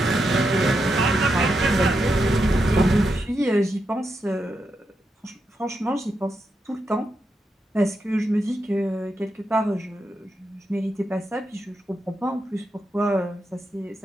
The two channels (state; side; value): normal; both; correlation 0.85